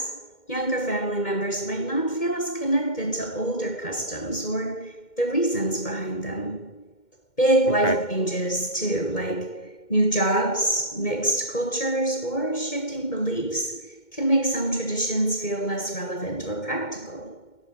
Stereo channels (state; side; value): late; right; 2.1 ms